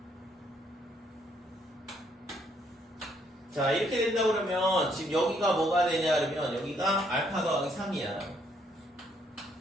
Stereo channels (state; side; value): normal; both; correlation 0.70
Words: 자, 이렇게 된다 그러면 지금 여기가 뭐가 되냐 그러면 여기가 알파 더하기 3이야.